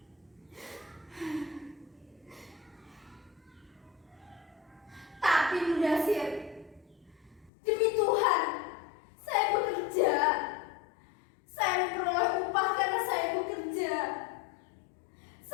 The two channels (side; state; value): right; drops out; at 7.5 s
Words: Tapi Mudasir, demi Tuhan, saya bekerja. Saya memperoleh upah karena saya bekerja.